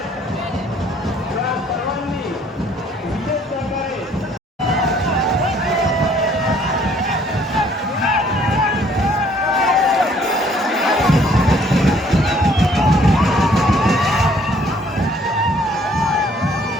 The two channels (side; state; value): both; normal; correlation 0.61